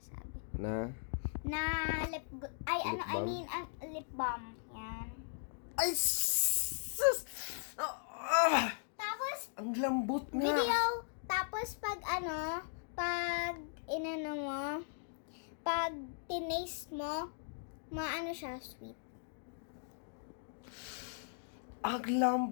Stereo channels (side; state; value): right; silent; digital silence